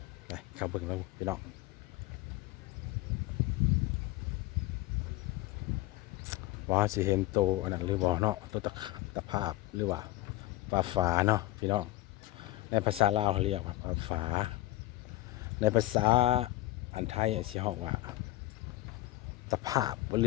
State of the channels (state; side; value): quieter; right; 17.6 dB